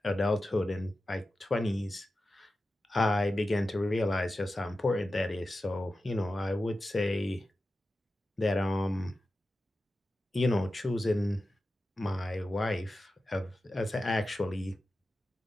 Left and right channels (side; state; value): both; normal; correlation 0.92